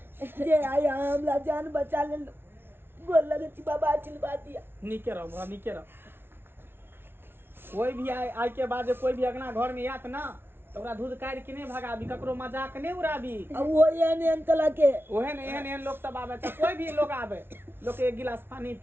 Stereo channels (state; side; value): late; left; 0.11 ms